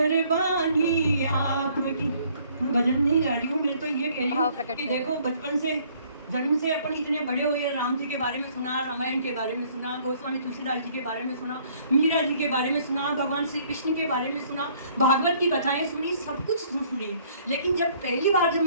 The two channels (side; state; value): both; inverted; correlation -0.61